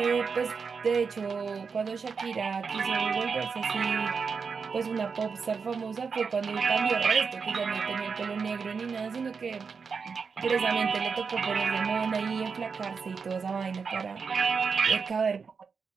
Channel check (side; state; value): left; quieter; 5.5 dB